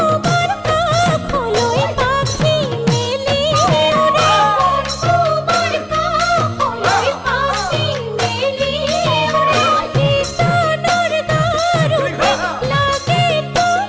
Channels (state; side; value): identical; both; correlation 1.00